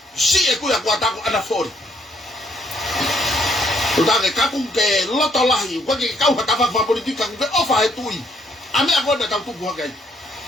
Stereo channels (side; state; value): both; normal; correlation 0.69